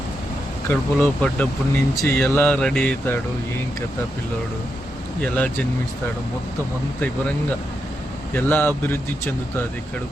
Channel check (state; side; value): normal; both; correlation 0.85